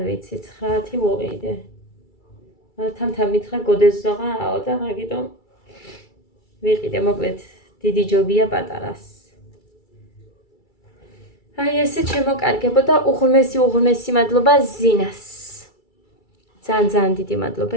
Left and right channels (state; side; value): late; right; 2.3 ms